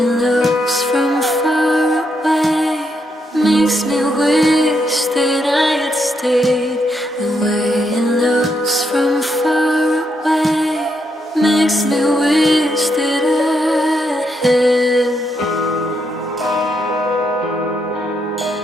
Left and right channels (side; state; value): both; normal; correlation 0.79